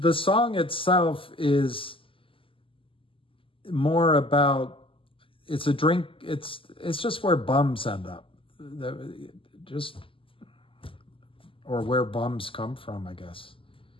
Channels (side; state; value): right; late; 0.25 ms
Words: song itself is more about, it's a drink, it's just where bums end up. Or where bums come from, I guess.